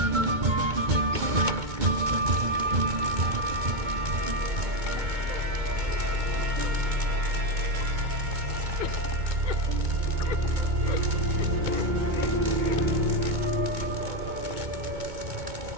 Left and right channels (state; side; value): late; left; 2.2 ms